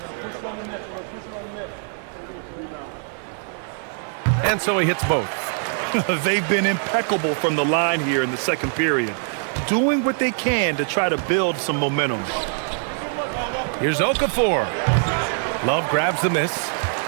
And so he hits both. They've been impeccable from the line here in the second period, doing what they can to try to build some momentum. Here's Okafor. Love grabs the miss.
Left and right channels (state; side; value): silent; left; 56 dB below the other